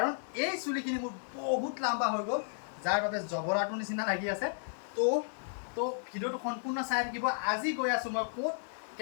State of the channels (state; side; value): silent; right; digital silence